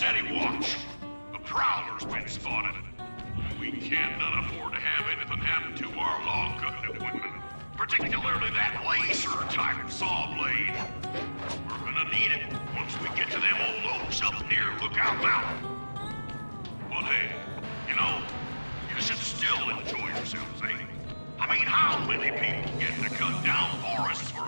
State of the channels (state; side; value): inverted; both; correlation -1.00